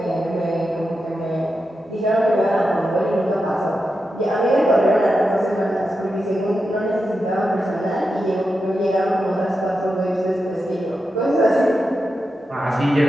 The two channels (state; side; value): normal; both; correlation 0.89